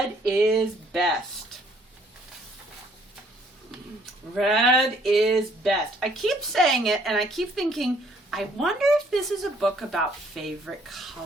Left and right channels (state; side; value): normal; both; correlation 0.63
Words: is best. Red is best. I keep saying it, and I keep thinking, I wonder if this is a book about favorite